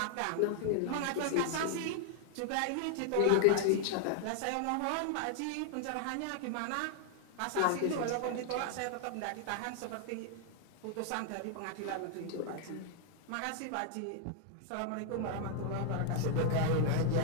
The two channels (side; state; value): both; different; correlation 0.00